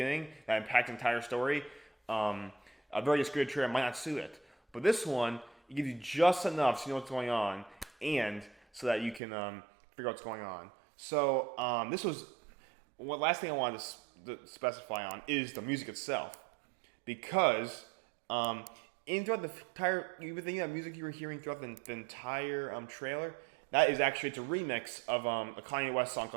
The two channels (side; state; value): left; drops out; at 9.2 s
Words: that impacts the entire story, a very scripted trailer might not suit it. But this one, it gives you just enough so you know what's going on, and so that you can figure out what's going on. So last thing I wanted to specify on is the music itself, because throughout the entire, you were thinking that music you were hearing throughout the entire trailer, that is actually, it's a remix of a Kanye West song